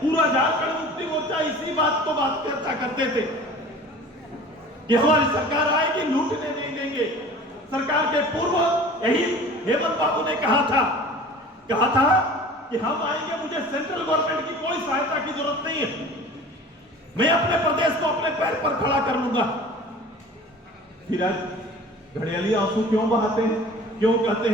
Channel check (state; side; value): normal; both; correlation 0.42